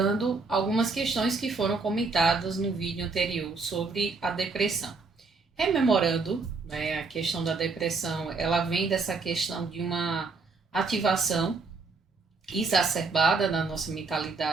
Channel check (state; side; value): quieter; left; 4.2 dB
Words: algumas questões que foram comentadas no vídeo anterior sobre a depressão. Rememorando, né, a questão da depressão, ela vem dessa questão de uma ativação exacerbada na nossa